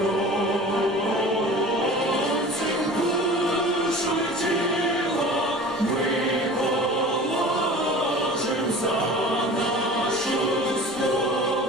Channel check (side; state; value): both; normal; correlation 0.40